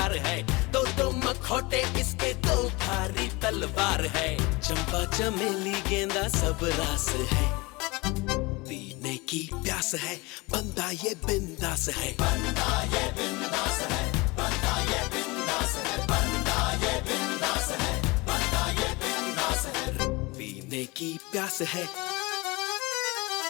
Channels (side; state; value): right; quieter; 24.5 dB